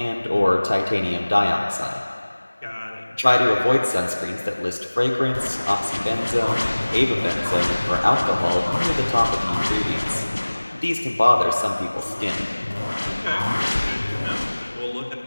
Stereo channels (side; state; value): both; inverted; correlation -1.00